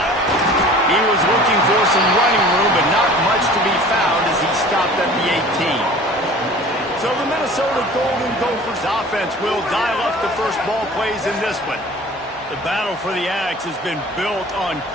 He was looking for some running room, but not much to be found as he stopped at the 18. So the Minnesota Golden Gophers offense will dial up the first ball plays in this one. The battle for the Ags has been built on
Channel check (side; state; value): both; normal; correlation 0.44